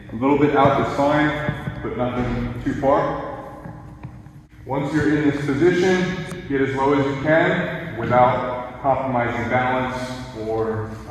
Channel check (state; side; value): identical; both; correlation 1.00